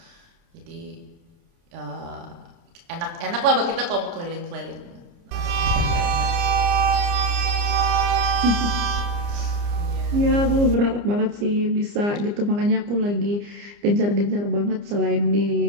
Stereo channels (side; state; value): left; late; 29 ms